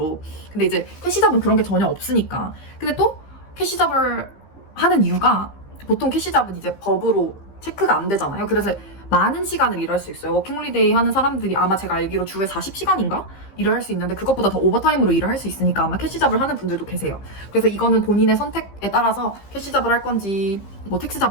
근데 이제 캐시잡은 그런 게 전혀 없으니까. 근데 또 캐시잡을 하는 이유가 보통 캐시잡은 이제 법으로 체크가 안 되잖아요. 그래서 많은 시간을 일할 수 있어요. 워킹홀리데이 하는 사람들이 아마 제가 알기로 주에 40시간인가? 일을 할 수 있는데 그것보다 더 오버타임으로 일을 할 수 있으니까 아마 캐시잡을 하는 분들도 계세요. 그래서 이거는 본인의 선택에 따라서 캐시잡을 할 건지 뭐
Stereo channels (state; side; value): late; right; 15 ms